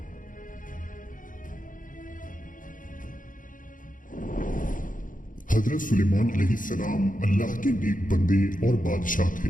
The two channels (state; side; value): late; right; 0.39 ms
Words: हजरत सुलेमान अलैहिस्सलाम अल्लाह के नेक बंदे और बादशाह थे